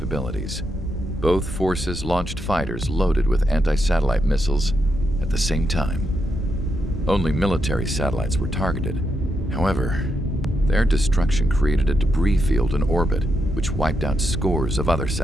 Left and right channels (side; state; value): both; normal; correlation 0.82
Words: both forces launched fighters loaded with anti-satellite missiles at the same time. Only military satellites were targeted. However, their destruction created a debris field in orbit, which wiped out scores of other